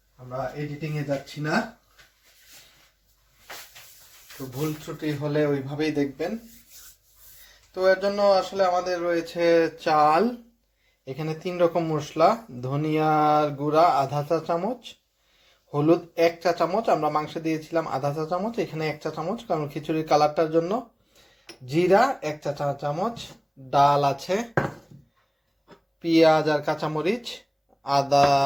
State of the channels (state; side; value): identical; both; correlation 1.00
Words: আমরা এডিটিংয়ে যাচ্ছি না। তো ভুল ত্রুটি হলে ওইভাবেই দেখবেন। তো এর জন্য আসলে আমাদের রয়েছে চাল, এখানে 3 রকম মশলা, ধনিয়ার গুঁড়া আধা চা চামচ, হলুদ 1 চা চামচ, আমরা মাংসে দিয়েছিলাম আধা চা চামচ, এখানে 1 চা চামচ কারণ খিচুড়ির কালারটার জন্য, জিরা 1 চা চামচ, ডাল আছে, পেঁয়াজ আর কাঁচামরিচ, আদা